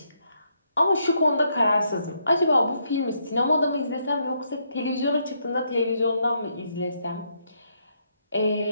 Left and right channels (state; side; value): inverted; both; correlation -0.76